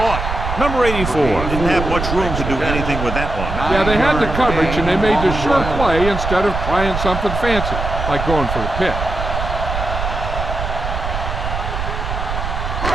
Number 84 didn't have much room to do anything with that one. Yeah, they had the coverage, and they made the sure play instead of trying something fancy, like going for the pick.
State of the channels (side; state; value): right; noise; rumble, 4 dB below the sound